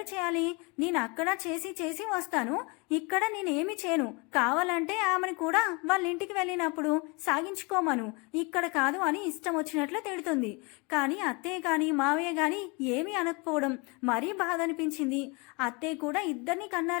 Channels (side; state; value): right; quieter; 29.3 dB